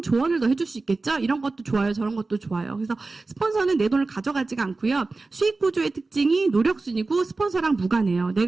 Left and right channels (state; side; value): quieter; left; 3.6 dB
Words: 조언을 더 해줄 수 있겠죠? 이런 것도 좋아요. 저런 것도 좋아요. 그래서 스폰서는 내 돈을 가져가지가 않고요. 수익 구조의 특징이 노력순이고 스폰서랑 무관해요.